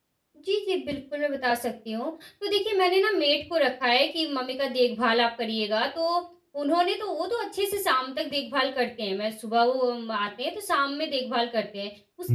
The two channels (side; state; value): both; identical; correlation 1.00